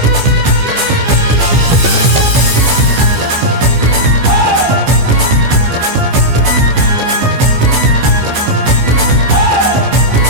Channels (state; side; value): late; left; 15 ms